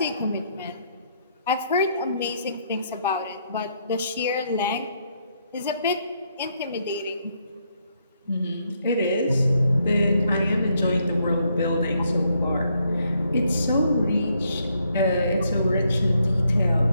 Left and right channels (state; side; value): inverted; both; correlation -0.74